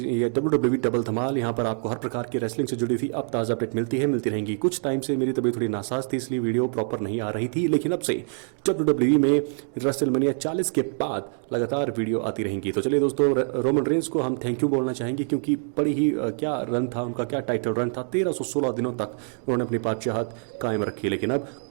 WWE डबल धमाल यहाँ पर आपको हर प्रकार की रेसलिंग से जुड़ी हुई अब ताज़ा अपडेट मिलती रहेंगी। कुछ टाइम से मेरी तबीयत थोड़ी नासाज थी, इसलिए वीडियो प्रॉपर नहीं आ रही थी, लेकिन अब से WWE में रेसलमेनिया 40 के बाद लगातार वीडियो आती रहेंगी। तो चलिए दोस्तों, रोमन रेंस को हम थैंक यू बोलना चाहेंगे, क्योंकि बड़ी ही क्या रन था उनका, क्या टाइटल रन था। 1316 दिनों तक उन्होंने अपनी बादशाहत कायम रखी। लेकिन अब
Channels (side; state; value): left; silent; 61 dB below the other